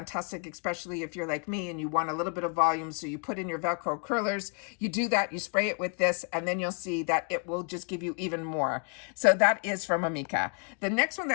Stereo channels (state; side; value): quieter; right; 37.0 dB